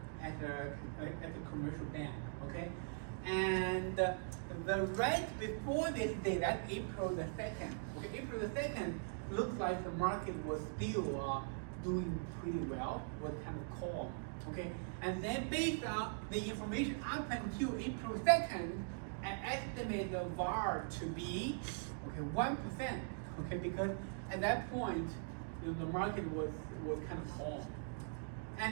at a commercial bank, okay? And the right before this day, that's April the 2nd. Okay, April the 2nd looks like the market was still doing pretty well, was kind of calm, okay? And then based on the information up until April 2nd, I estimate the VAR to be 1%, okay? Because at that point, the market was kind of calm.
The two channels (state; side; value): silent; left; digital silence